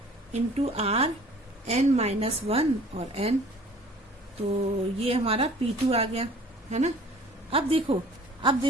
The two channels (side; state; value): both; normal; correlation 0.50